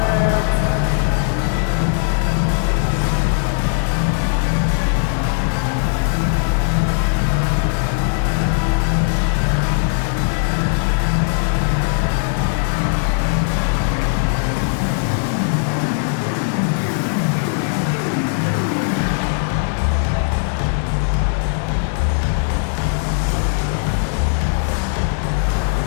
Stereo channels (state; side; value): silent; right; digital silence